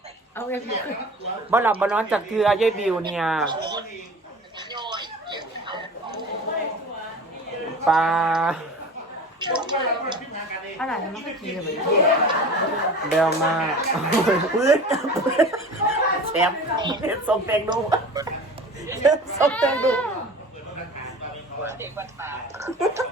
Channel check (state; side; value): normal; both; correlation 0.38